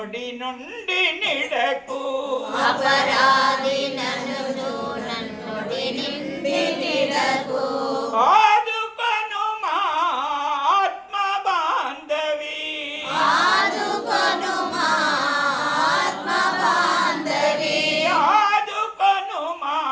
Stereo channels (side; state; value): both; identical; correlation 1.00